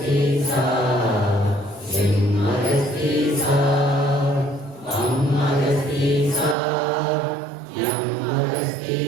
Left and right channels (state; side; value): drops out; left; at 6.6 s